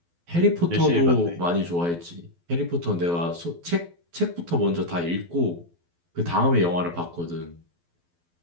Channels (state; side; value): late; left; 12 ms